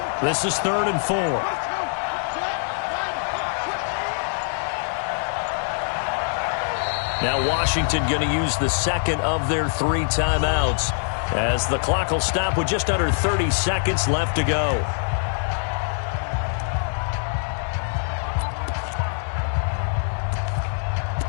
This is 3rd and 4. Now Washington going to use the 2nd of their 3 timeouts as the clock will stop with just under 30 seconds left to go.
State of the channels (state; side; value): silent; right; digital silence